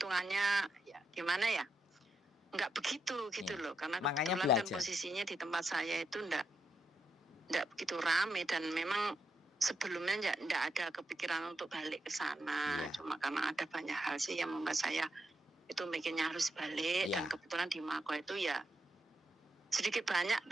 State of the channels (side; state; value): both; normal; correlation 0.83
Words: ya gimana ya? Enggak begitu gitu loh, karena kebetulan kan posisinya di tempat saya itu enggak begitu rame, dan memang sebelumnya enggak ada kepikiran untuk balik ke sana. Cuma karena ada banyak hal sih yang membuat saya itu mikirnya harus balik, dan kebetulan di Mako itu ya sedikit banyak